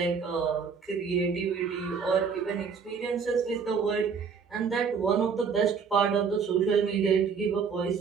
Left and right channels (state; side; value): quieter; left; 5.9 dB